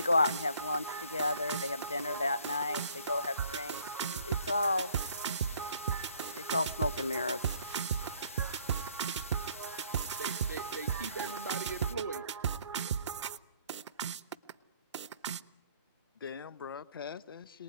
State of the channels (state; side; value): inverted; both; correlation -0.61